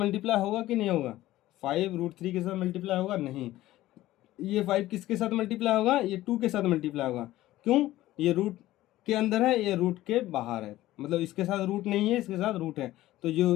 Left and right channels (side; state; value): right; quieter; 15.7 dB